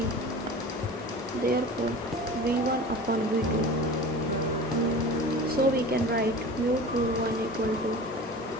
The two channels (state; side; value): normal; both; correlation 0.36